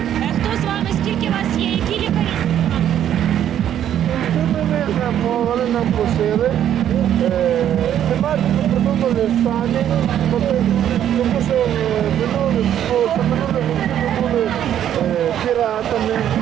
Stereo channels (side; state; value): left; quieter; 10.5 dB